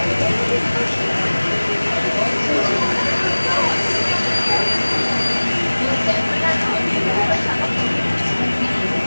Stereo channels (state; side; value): inverted; both; correlation -1.00